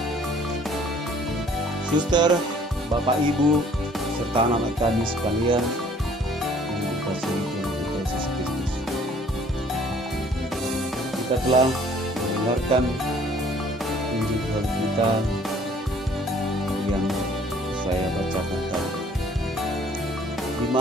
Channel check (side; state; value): both; normal; correlation 0.57